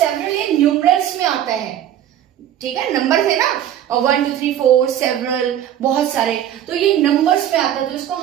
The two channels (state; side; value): quieter; left; 11.0 dB